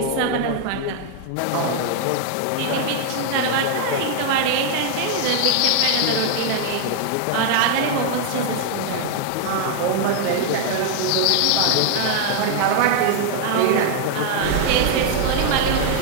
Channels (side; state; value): both; different; correlation 0.00